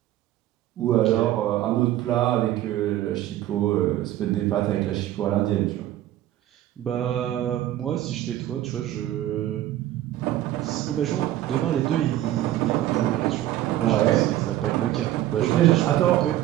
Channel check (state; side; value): quieter; left; 13.7 dB